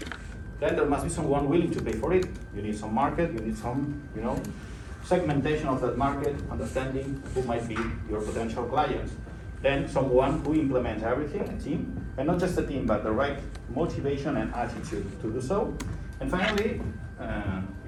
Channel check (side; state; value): both; identical; correlation 1.00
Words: Then there must be someone willing to pay for it. You need some market, you need some, segmentation of that market, understanding who might be your potential clients. Then someone who implements everything, a team, and not just a team, but the right motivation and attitude to do so. And finally,